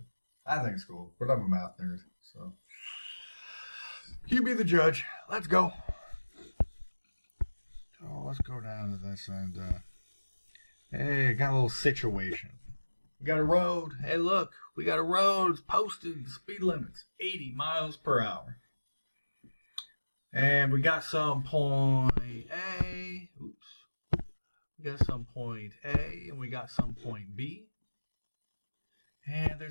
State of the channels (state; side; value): inverted; both; correlation -1.00